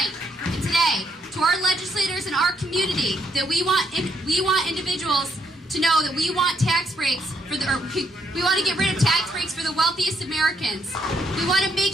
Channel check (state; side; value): normal; both; correlation 0.74